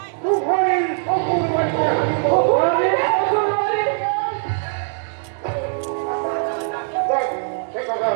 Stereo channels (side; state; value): left; silent; 65 dB below the other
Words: তুফানির সকল বাড়িতে সে কথা